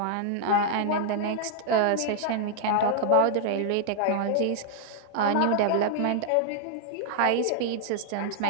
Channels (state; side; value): different; both; correlation 0.00